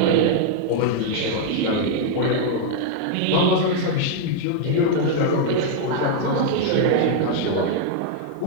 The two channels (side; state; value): both; different; correlation 0.00